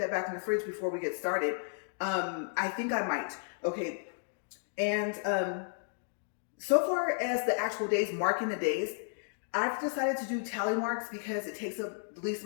back in the fridge before we get started. I think I might. Okay, and so far as the actual days, marking the days, I've decided to do tally marks because it takes up the least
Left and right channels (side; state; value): right; silent; digital silence